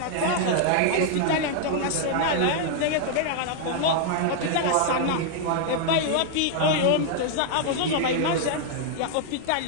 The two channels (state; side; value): different; both; correlation 0.00